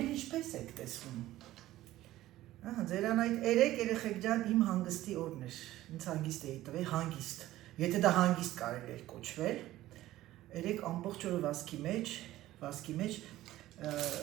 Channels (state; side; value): quieter; left; 15.3 dB